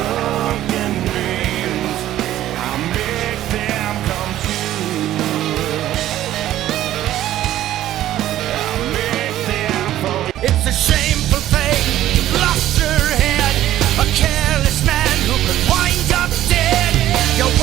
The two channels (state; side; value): quieter; left; 13.3 dB